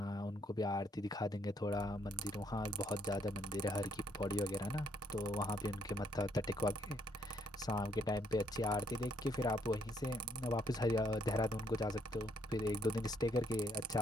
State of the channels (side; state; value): both; normal; correlation 0.70